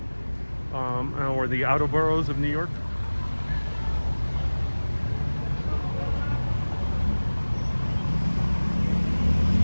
Or the outer boroughs of New York.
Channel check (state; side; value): inverted; both; correlation -1.00